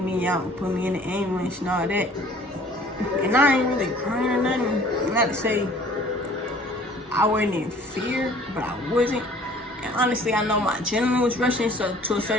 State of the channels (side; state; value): both; normal; correlation 0.52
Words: me out and put me in the ambulance and all that. And I ain't really crying or nothing. Not to say I wasn't in fear, but I wasn't. And honestly, I know my adrenaline was rushing, so to a